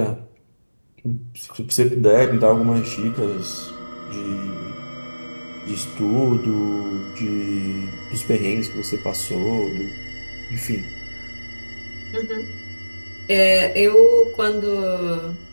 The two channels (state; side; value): inverted; both; correlation -1.00